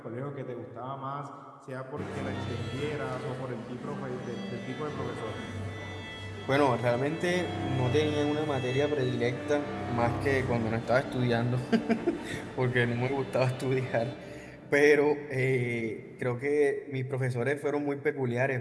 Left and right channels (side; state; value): both; identical; correlation 1.00